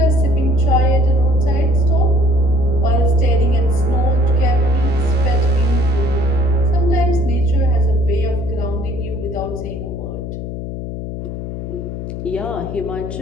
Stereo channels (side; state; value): left; noise; hum, 7 dB below the sound